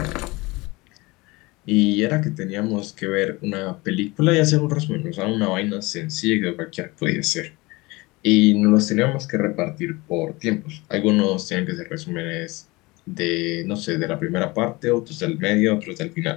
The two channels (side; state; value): right; quieter; 23.0 dB